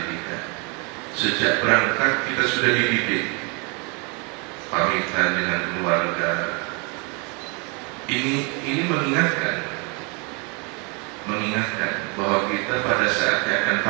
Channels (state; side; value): quieter; left; 32.2 dB